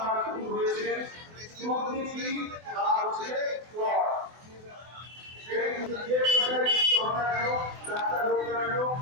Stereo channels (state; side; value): late; left; 24 ms